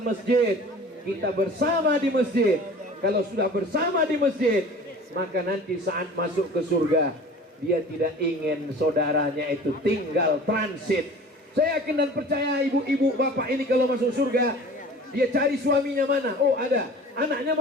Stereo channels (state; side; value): normal; both; correlation 0.43